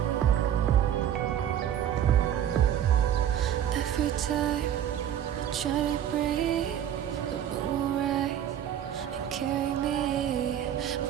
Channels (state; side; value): quieter; left; 10.1 dB